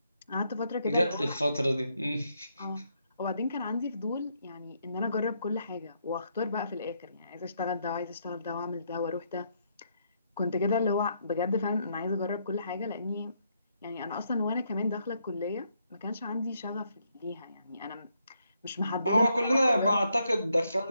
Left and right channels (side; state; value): both; inverted; correlation -0.75